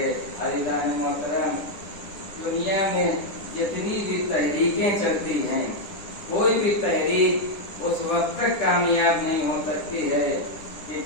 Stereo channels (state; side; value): late; right; 10 ms